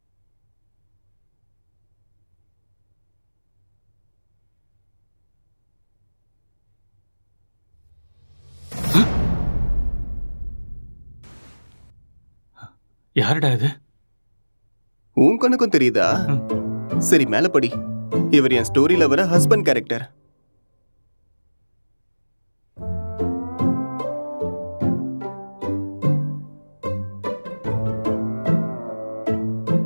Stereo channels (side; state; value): both; inverted; correlation -1.00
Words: யாருடா இது? உன் கண்ணுக்கும் தெரியுதா? சரி, மேல படி. இவர் என் ஸ்டோரியில வர ஹஸ்பண்ட் கேரக்டர்.